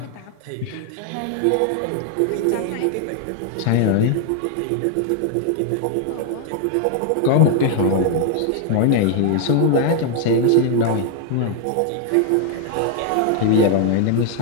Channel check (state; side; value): different; both; correlation 0.00